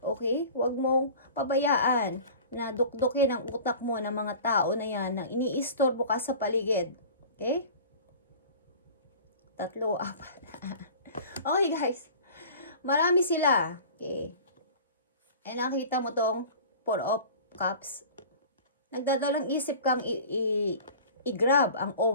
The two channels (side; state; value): both; inverted; correlation -0.41